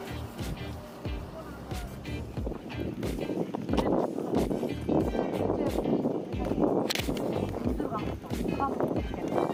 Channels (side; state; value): both; identical; correlation 1.00